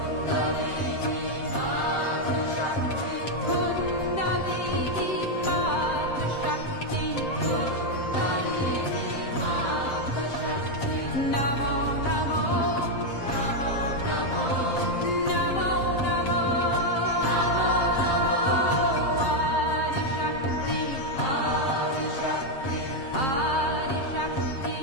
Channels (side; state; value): right; late; 7.6 ms